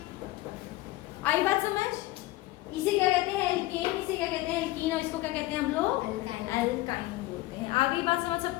आई बात समझ? इसे क्या कहते हैं? एल्केन। इसे क्या कहते हैं? एल्कीन। और इसको क्या कहते हैं हम लोग? एल्काइन। एल्काइन बोलते हैं। आगे बात समझ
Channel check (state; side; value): quieter; right; 18.2 dB